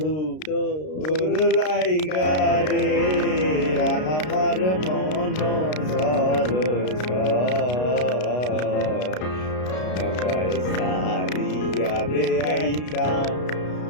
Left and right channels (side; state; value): right; late; 33 ms